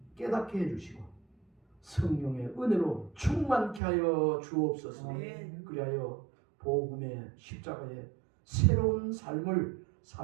깨닫게 해주시고 성령의 은혜로 충만케 하여 주옵소서. 아멘. 그리하여 복음의 십자가의 새로운 삶을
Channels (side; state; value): left; drops out; at 3.8 s